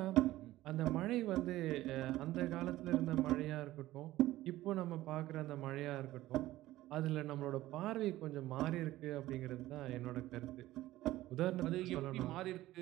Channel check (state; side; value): quieter; left; 15.9 dB